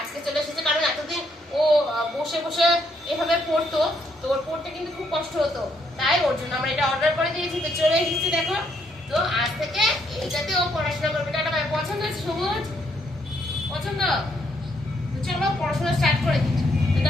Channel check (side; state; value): both; normal; correlation 0.73